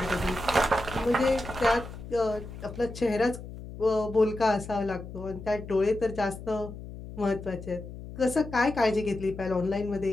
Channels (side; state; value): left; noise; hum, 12 dB below the sound